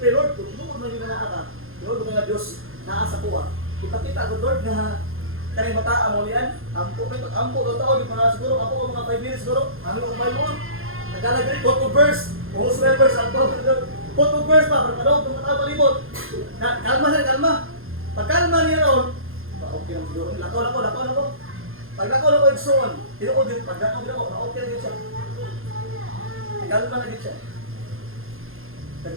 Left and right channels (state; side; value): late; left; 0.60 ms